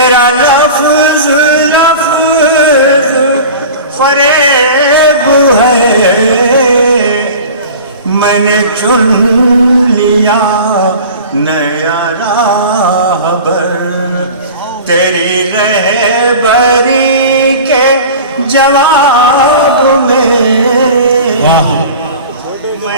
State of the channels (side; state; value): both; inverted; correlation -0.38